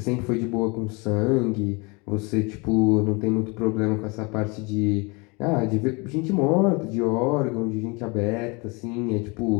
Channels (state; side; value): quieter; right; 28.8 dB